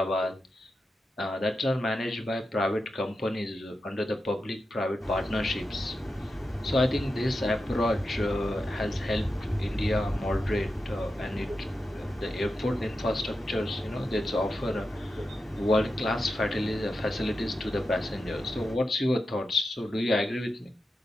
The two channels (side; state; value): both; normal; correlation 0.89